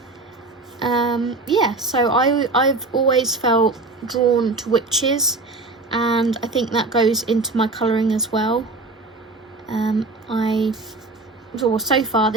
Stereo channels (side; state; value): left; quieter; 3.3 dB